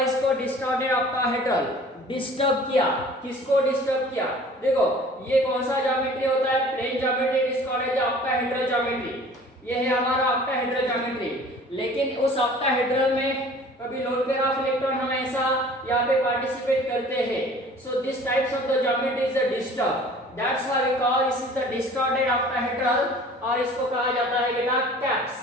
इसको distorted octahedral? डिस्टर्ब किया, किसको डिस्टर्ब किया? देखो ये कौन सा ज्योमेट्री होता है? Plane geometry, it is called as octahedral geometry. ये है हमारा ऑक्टाहेड्रल ज्योमेट्री। लेकिन उस ऑक्टाहेड्रल में कभी लोन पेयर ऑफ इलेक्ट्रॉन हमेशा यहाँ पे पार्टिसिपेट करते हैं। So this types of the geometry is a disturb, that's why we call this is the distorted octahedral, और इसको कहा जाता है बेटा cap,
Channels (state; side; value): normal; both; correlation 0.47